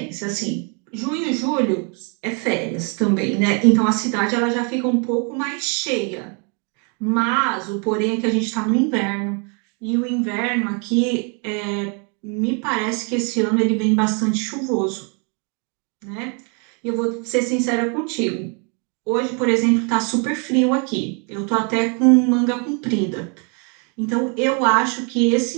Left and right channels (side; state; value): left; quieter; 36.4 dB